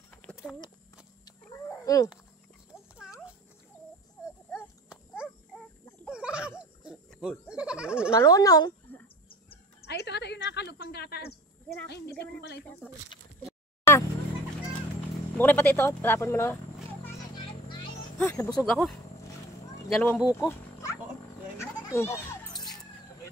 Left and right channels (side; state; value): both; normal; correlation 0.41